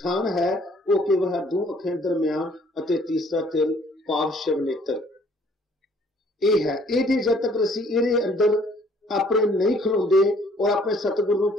है, वो केवल दो अखां दरम्यान अते तीसरा तिल पाप शिव नेत्र ये है। ये जब तक असीं इहदे अंदर अपने नहीं खलोंदे और अपने सतगुरु नूं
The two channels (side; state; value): both; normal; correlation 0.60